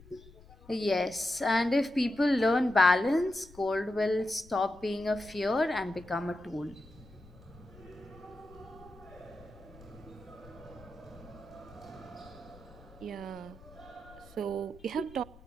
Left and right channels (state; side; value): noise; left; rumble, 22 dB below the sound